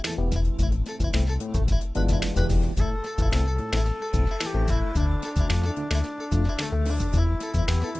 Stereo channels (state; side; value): normal; both; correlation 0.98